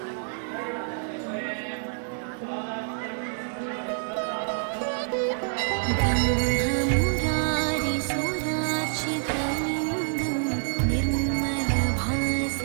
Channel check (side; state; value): left; silent; digital silence